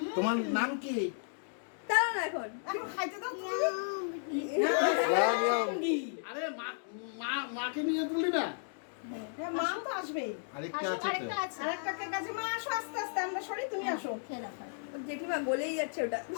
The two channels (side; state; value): right; silent; digital silence